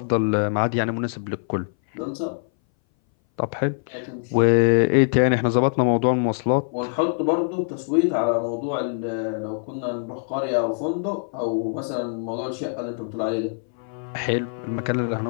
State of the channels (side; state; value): right; silent; 59 dB below the other